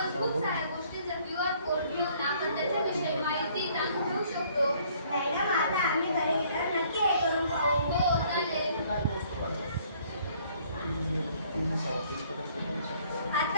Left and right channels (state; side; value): inverted; both; correlation -0.61